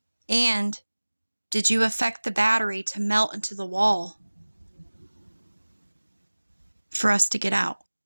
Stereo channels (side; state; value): both; inverted; correlation -1.00